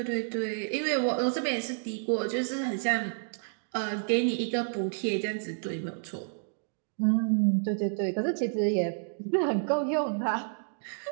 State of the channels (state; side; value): silent; left; digital silence